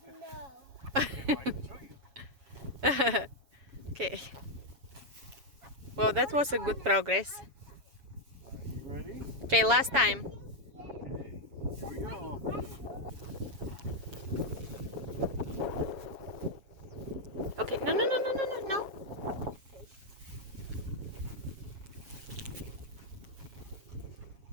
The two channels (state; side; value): late; left; 7.2 ms